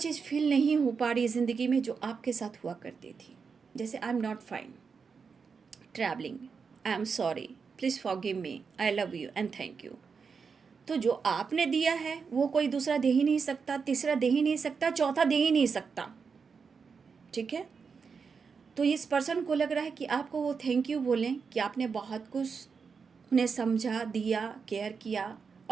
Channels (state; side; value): quieter; left; 5.5 dB